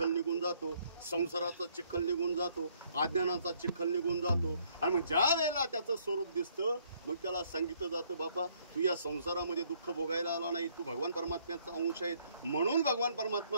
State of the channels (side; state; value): both; inverted; correlation -0.66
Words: निघून जातो, संसाराचा चिखल निघून जातो, अज्ञानाचा चिखल निघून जातो आणि मग ज्या वेळेला त्याचं स्वरूप दिसतं, मग त्याला सांगितलं जातं, बापा तू या संसारामध्ये दुःख भोगायला आला नाही, तू भगवान परमात्म्याचा अंश आहे. म्हणून भगवान